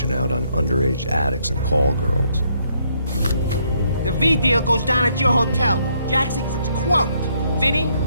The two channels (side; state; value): both; inverted; correlation -0.71